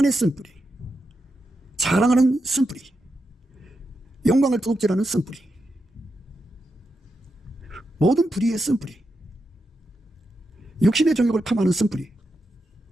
쓴뿌리, 자랑하는 쓴뿌리, 영광을 도둑질하는 쓴뿌리, 모든 뿌리의 쓴뿌리. 육신의 정욕을 탐하는 쓴뿌리,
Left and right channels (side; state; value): both; normal; correlation 0.86